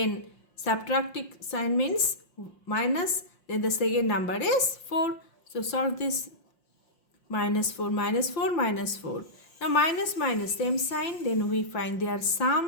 subtracting sign means minus, then the second number is 4. So solve this. Minus 4 minus 4 minus 4. Now minus minus same sign, then we find their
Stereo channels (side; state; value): right; late; 5.7 ms